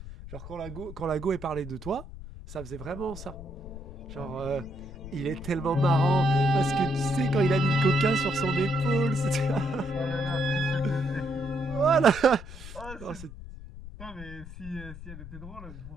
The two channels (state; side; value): noise; left; rumble, 13 dB below the sound